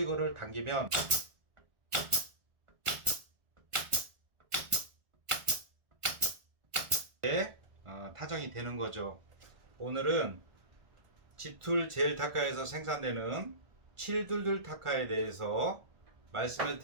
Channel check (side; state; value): left; late; 1.4 ms